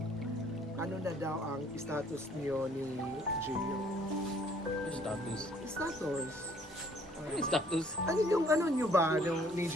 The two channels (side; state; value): both; normal; correlation 0.60